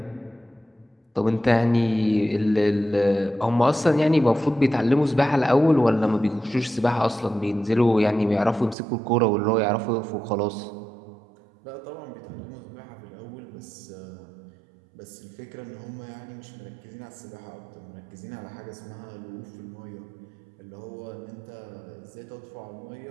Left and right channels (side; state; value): left; drops out; at 8.8 s